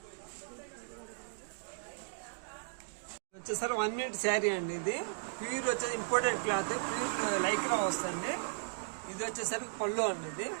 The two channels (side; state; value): left; silent; digital silence